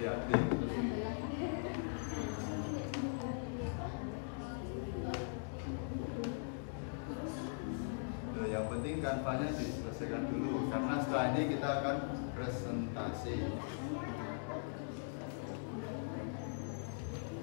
Yang penting kanvanya diselesaikan dulu karena setelah ini kita akan presentasi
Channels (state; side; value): silent; right; digital silence